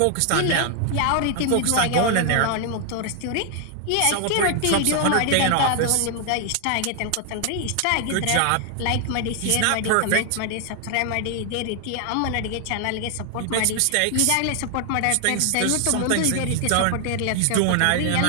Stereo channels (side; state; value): both; different; correlation 0.00